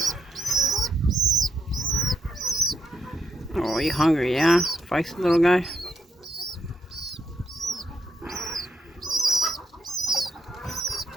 Oh, you hungry, yeah? Feisty little guy.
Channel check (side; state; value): both; normal; correlation 0.79